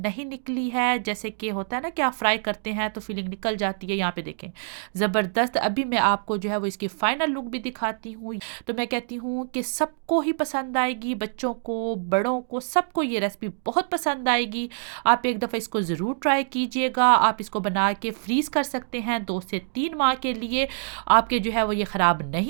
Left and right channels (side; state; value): left; silent; digital silence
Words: निकली है, जैसे कि होता है ना कि आप फ्राई करते हैं तो फीलिंग निकल जाती है। यहाँ पे देखें ज़बरदस्त। अभी मैं आपको जो है वो इसकी फाइनल लुक भी दिखाती हूँ। तो मैं कहती हूँ कि सबको ही पसंद आएगी, बच्चों को, बड़ों को, सबको ये रेसिपी बहुत पसंद आएगी। आप एक दफ़ा इसको ज़रूर ट्राई कीजिएगा। आप इसको बना के फ्रीज़ कर सकते हैं 2 से 3 माह के लिए। आपके जो है वो ये ख़राब